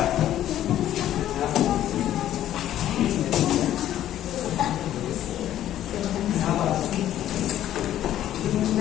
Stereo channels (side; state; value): right; quieter; 12.2 dB